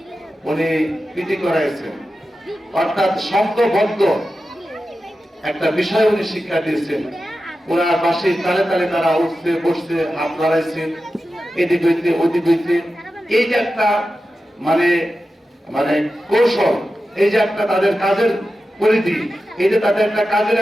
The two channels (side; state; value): both; normal; correlation 0.92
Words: উনি পিটি করাইছেন, অর্থাৎ সংঘবদ্ধ একটা বিষয় উনি শিক্ষা দিয়েছেন। ওনার পাশে তালে তালে তারা উঠছে বসছে, হাত লড়াইছে, এদিক হইতে ওদিক হইতে, এই যে একটা মানে মানে কৌশল, এই যে একটা তাদের কাজের পরিধি, এই যে তাদের একটা কাজের